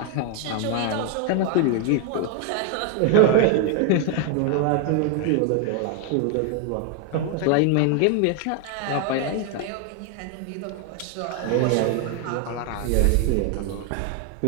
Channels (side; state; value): both; different; correlation 0.01